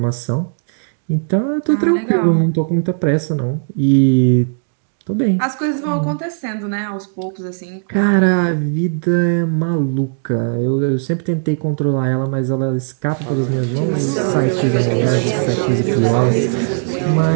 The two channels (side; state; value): left; silent; digital silence